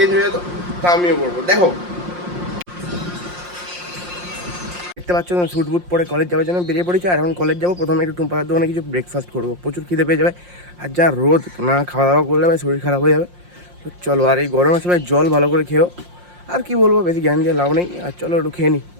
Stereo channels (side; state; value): left; late; 5.6 ms